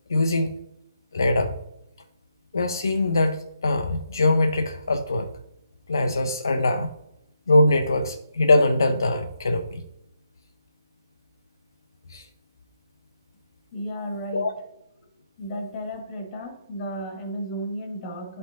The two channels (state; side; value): inverted; both; correlation -0.82